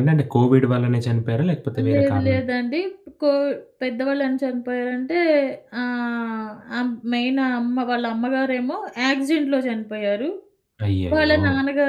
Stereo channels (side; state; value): both; identical; correlation 1.00